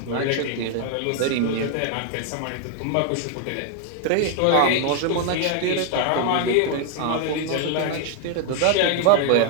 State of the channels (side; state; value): both; different; correlation 0.00